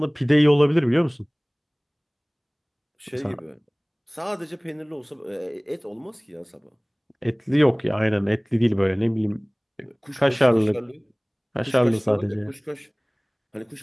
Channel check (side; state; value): both; identical; correlation 1.00